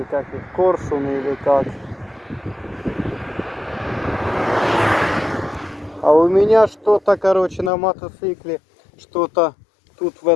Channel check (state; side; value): drops out; right; at 7.7 s